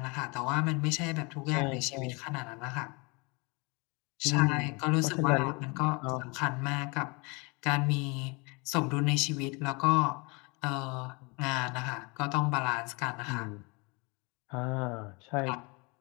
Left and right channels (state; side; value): quieter; right; 29.1 dB